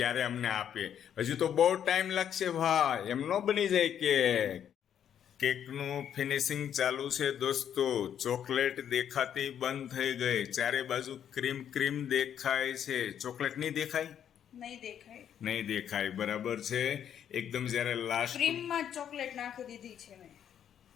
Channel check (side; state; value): right; quieter; 9.3 dB